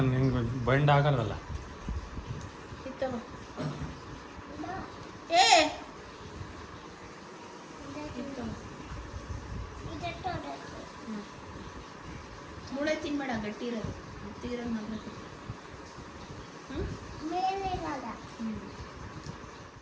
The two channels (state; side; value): identical; both; correlation 1.00